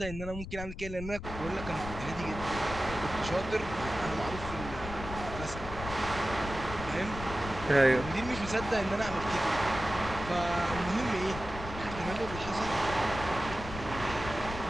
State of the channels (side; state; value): left; noise; rumble, 9 dB below the sound